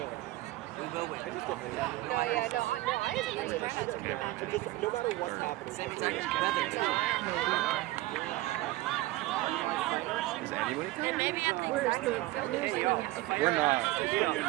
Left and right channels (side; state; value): left; quieter; 18.2 dB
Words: No, yeah, no, I agree. Just no matter what's happening. No, maybe I think We're not.